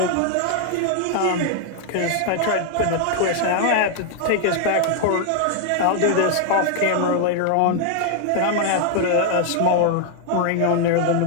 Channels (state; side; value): different; both; correlation 0.00